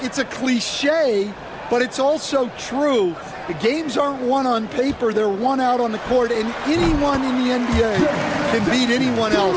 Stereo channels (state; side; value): identical; both; correlation 1.00